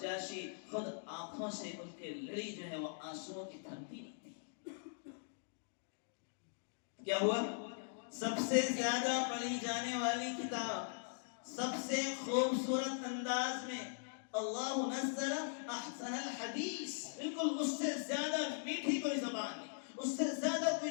خود آنکھوں سے ان کے لڑی جو ہے وہ آنسوؤں کی تھمتی نہیں تھی۔ کیا ہوا؟ سب سے زیادہ پڑھی جانے والی کتاب، سب سے خوبصورت انداز میں، اللہ نزل احسن الحدیث، بالکل اس سے زیادہ میٹھی کوئی زبان نہیں، اس سے زیادہ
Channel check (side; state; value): right; silent; digital silence